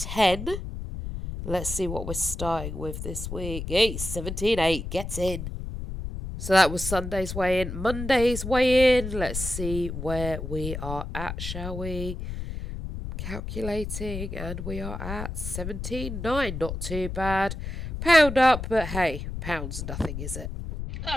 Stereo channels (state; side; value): noise; left; rumble, 6 dB below the sound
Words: Let's see what we're starting with this week. Hey, 17:8, get in. So that was Sunday's weigh in. Monday's weigh in. Let's see where we are at, shall we? Calculating, and we are at 17.9. Not too bad. Pound up, but hey, pound's nothing, is it?